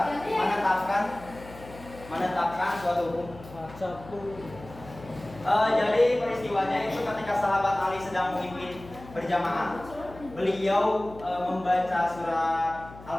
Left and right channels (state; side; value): noise; left; hum, 18 dB below the sound